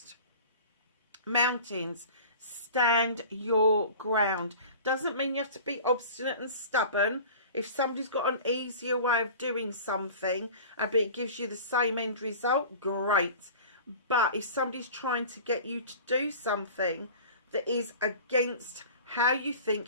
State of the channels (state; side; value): inverted; both; correlation -0.40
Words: Mountains, stand your ground. Doesn't mean you have to be obstinate and stubborn. If somebody's got an easier way of doing something, but it gives you the same end result, great. But if somebody's trying to get you to do something that is against how you